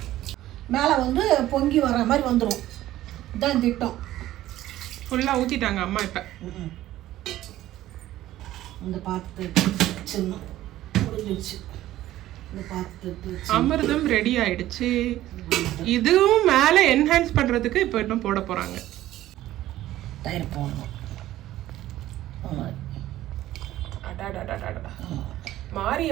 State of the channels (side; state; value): left; quieter; 14.4 dB